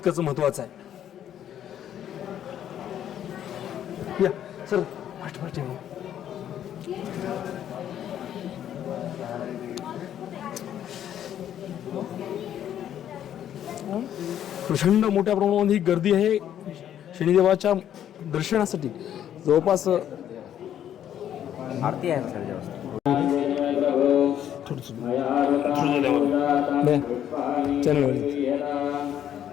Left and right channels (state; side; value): quieter; right; 10.4 dB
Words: महत्त्वाचं आहे. या सर प्रचंड मोठ्या प्रमाणामध्ये ही गर्दी आहे शनिदेवाच्या दर्शनासाठी. जवळपास आरती आहे सर